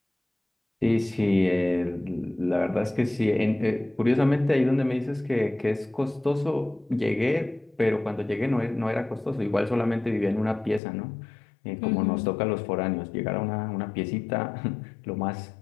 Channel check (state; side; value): drops out; right; at 10.8 s